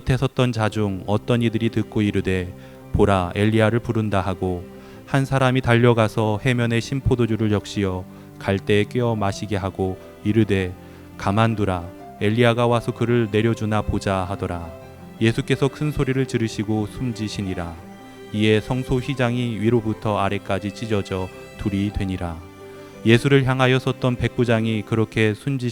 섰던 자 중 어떤 이들이 듣고 이르되 보라 엘리야를 부른다 하고 한 사람이 달려가서 해면에 신 포도주를 적시어 갈대에 꿰어 마시게 하고 이르되 가만두라 엘리야가 와서 그를 내려주나 보자 하더라. 예수께서 큰 소리를 지르시고 숨지시니라. 이에 성소 휘장이 위로부터 아래까지 찢어져 둘이 되니라. 예수를 향하여 섰던 백부장이 그렇게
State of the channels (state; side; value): identical; both; correlation 1.00